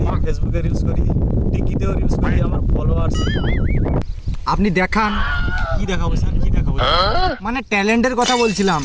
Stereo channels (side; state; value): both; identical; correlation 1.00